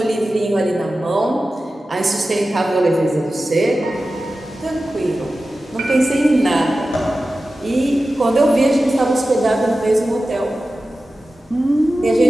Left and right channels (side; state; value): both; normal; correlation 0.94